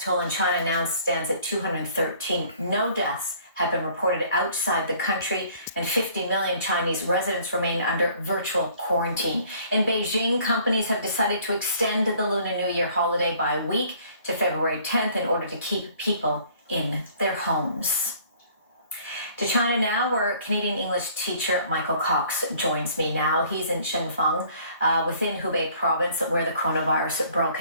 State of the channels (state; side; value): inverted; both; correlation -0.56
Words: toll in China now stands at 213. No deaths have been reported outside the country, and 50 million Chinese residents remain under virtual quarantine. In Beijing, companies have decided to extend the Lunar New Year holiday by a week to February 10th in order to keep people in their homes. To China now, where Canadian English teacher Michael Cox joins me now. He's in Shenzhen, within Hubei province, where the coronavirus broke